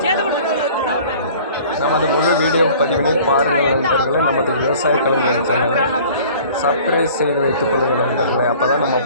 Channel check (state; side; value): inverted; both; correlation -0.48